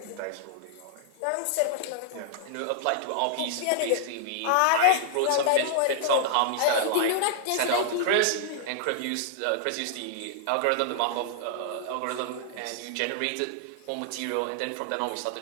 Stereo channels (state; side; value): different; both; correlation -0.01